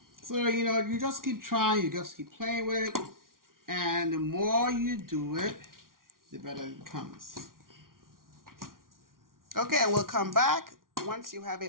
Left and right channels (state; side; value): late; left; 0.91 ms